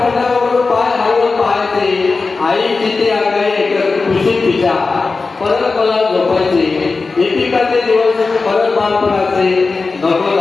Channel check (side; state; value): right; quieter; 4.1 dB